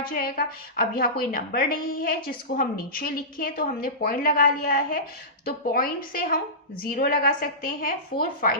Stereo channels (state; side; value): normal; both; correlation -0.19